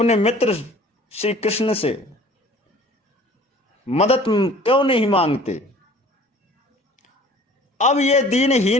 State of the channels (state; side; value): normal; both; correlation 0.49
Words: मित्र श्री कृष्ण से मदद क्यों नहीं मांगते? अब यह